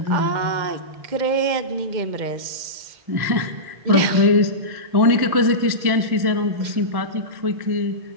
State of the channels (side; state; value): left; late; 2.1 ms